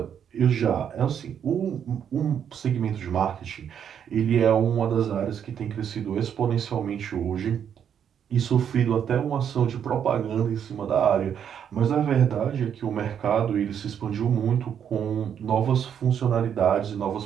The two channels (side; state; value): left; quieter; 8.5 dB